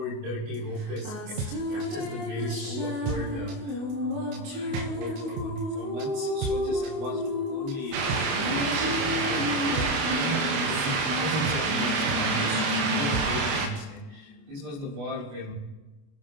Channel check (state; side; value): late; left; 28 ms